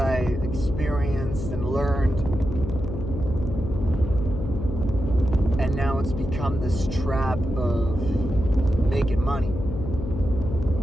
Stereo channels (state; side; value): noise; left; hum, 6 dB below the sound